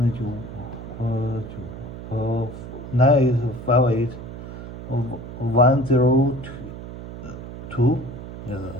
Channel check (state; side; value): noise; right; hum, 11 dB below the sound